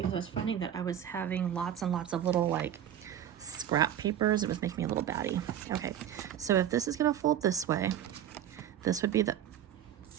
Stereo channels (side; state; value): left; quieter; 10.5 dB